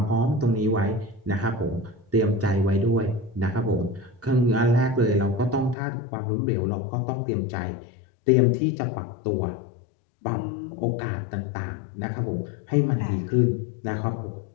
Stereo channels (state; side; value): drops out; right; at 5.8 s